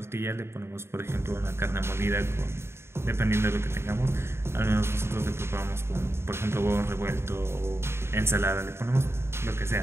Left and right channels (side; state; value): left; late; 0.12 ms